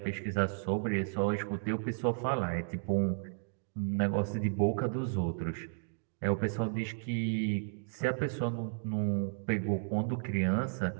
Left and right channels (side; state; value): left; silent; digital silence